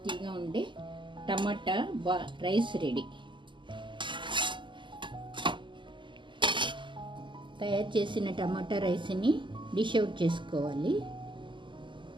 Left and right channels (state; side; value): late; left; 0.24 ms